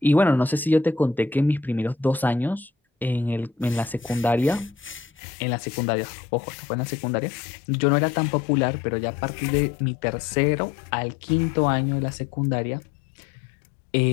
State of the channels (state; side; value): drops out; right; at 5.1 s